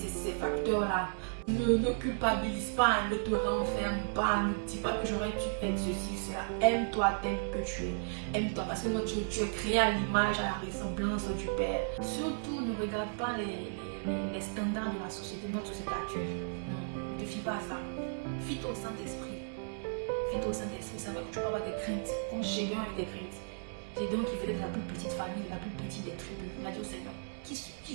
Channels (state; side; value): silent; left; 55 dB below the other